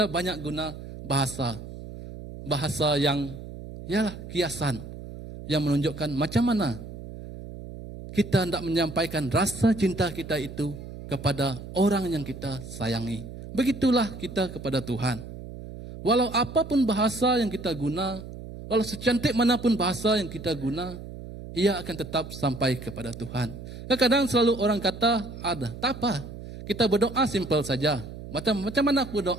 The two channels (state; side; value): noise; right; hum, 12 dB below the sound